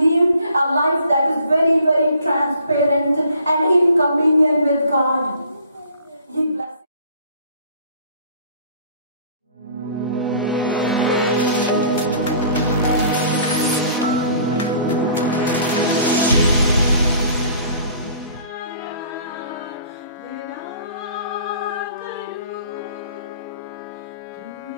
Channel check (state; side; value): inverted; both; correlation -0.53